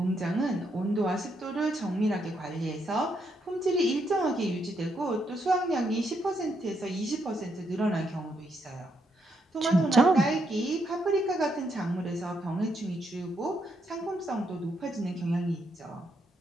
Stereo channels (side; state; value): both; normal; correlation 0.78